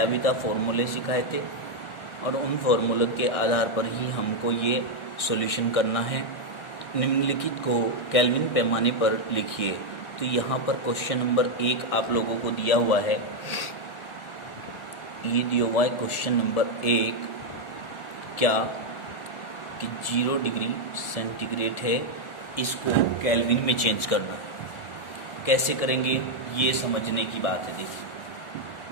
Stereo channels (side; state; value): right; late; 1.4 ms